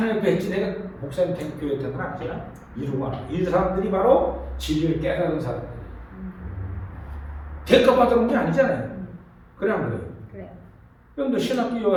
뵙지 내가 목사님 교회 되는 건 아니잖아. 이루고 하나. 이 사람들이 바로 진리를 깨달은 사람들. 대가 받으는 게 아니잖아요. 그래 안 그래요? 그래요. 그런데 신학교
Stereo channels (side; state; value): both; identical; correlation 1.00